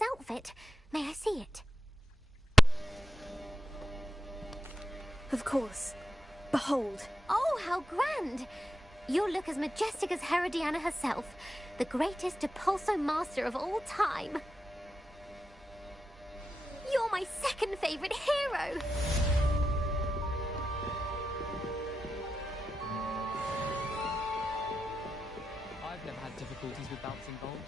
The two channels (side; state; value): both; normal; correlation 0.88